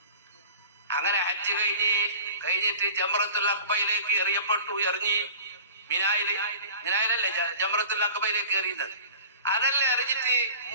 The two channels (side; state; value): both; inverted; correlation -0.41